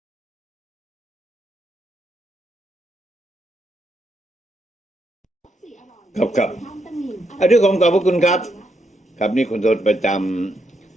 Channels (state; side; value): normal; both; correlation 0.79